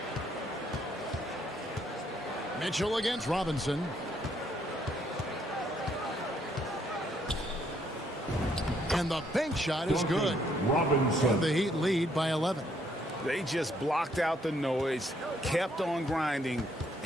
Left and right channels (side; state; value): both; normal; correlation 0.70